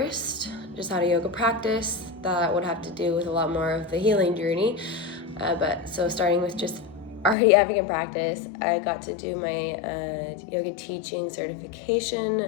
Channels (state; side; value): drops out; right; at 7.4 s